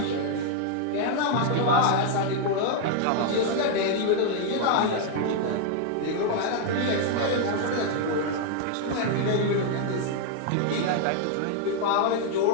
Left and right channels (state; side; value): different; both; correlation 0.00